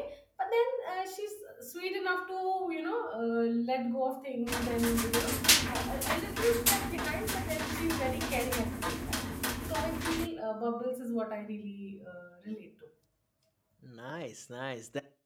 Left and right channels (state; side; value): identical; both; correlation 1.00